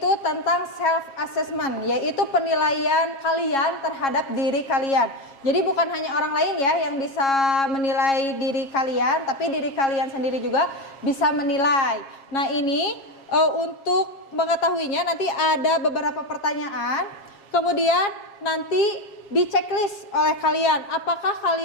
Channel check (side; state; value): right; late; 7.4 ms